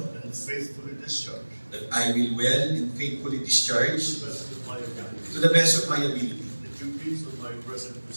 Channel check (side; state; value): both; inverted; correlation -1.00